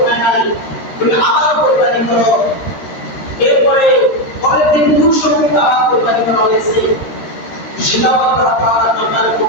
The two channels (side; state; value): right; late; 13 ms